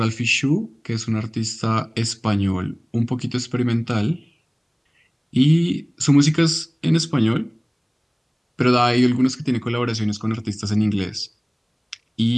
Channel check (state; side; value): identical; both; correlation 1.00